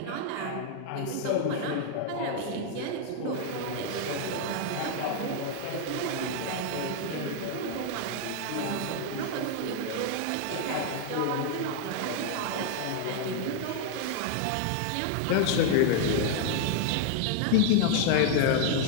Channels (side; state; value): both; different; correlation 0.00